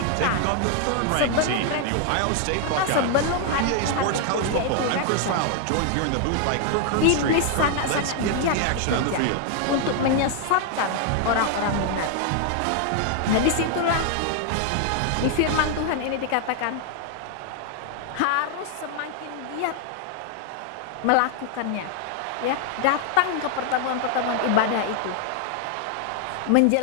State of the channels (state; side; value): different; both; correlation 0.00